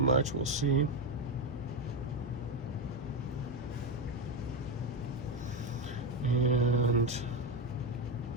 we'll see. And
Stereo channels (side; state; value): both; normal; correlation 0.10